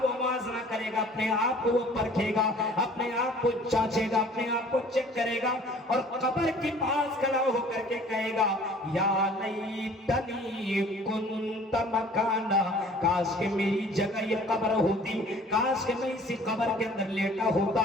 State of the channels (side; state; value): both; normal; correlation 0.51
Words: وہ موازنہ کرے گا، اپنے آپ کو وہ پرکھے گا، اپنے آپ کو جانچے گا، اپنے آپ کو چیک کرے گا، اور قبر کے پاس کھڑا ہو کر کے کہے گا یا لیتنی کنت مکانا، کاش کہ میری جگہ یہ قبر ہوتی، کاش کہ میں اسی قبر کے اندر لیٹا ہوتا،